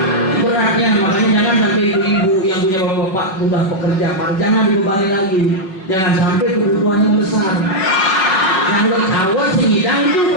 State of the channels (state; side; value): late; right; 5.5 ms